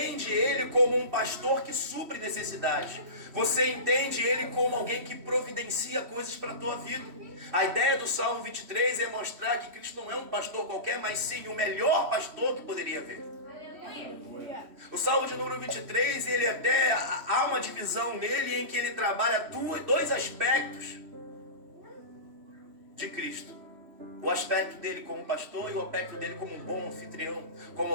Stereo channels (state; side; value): late; left; 3.1 ms